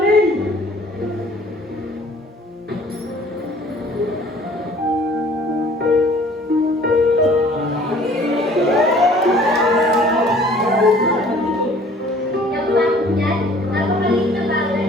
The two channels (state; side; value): normal; both; correlation 0.53